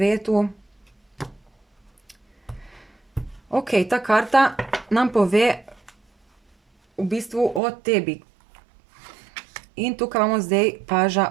Ok, ta karta nam pove v bistvu o tebi. In tukaj imamo zdaj paža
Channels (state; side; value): drops out; left; at 7.6 s